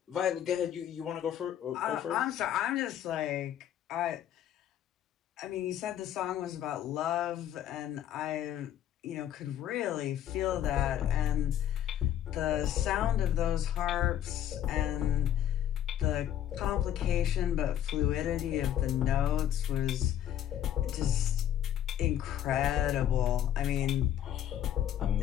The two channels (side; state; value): right; quieter; 10.9 dB